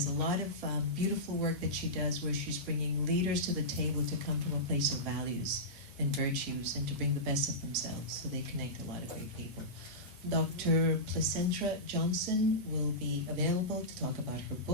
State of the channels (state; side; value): normal; both; correlation -0.16